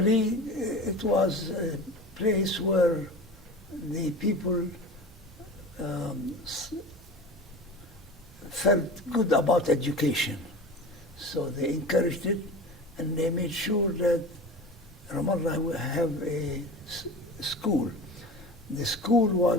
it was a place where the people felt good about education. So they encouraged it, and they made sure that Ramallah will have a school. The school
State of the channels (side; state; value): both; normal; correlation 0.34